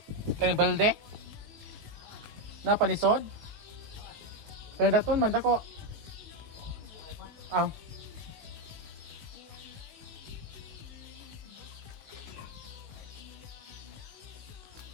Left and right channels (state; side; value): late; left; 19 ms